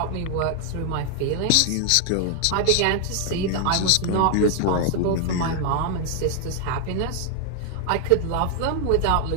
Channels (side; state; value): both; different; correlation 0.00